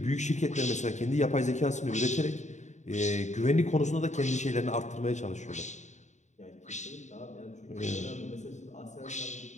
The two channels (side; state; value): right; late; 0.34 ms